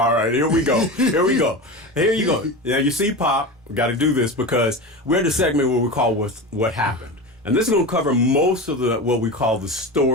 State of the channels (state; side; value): normal; both; correlation 0.26